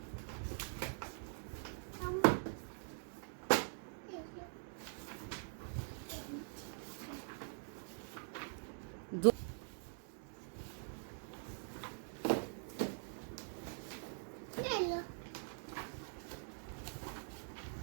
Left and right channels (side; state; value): left; silent; digital silence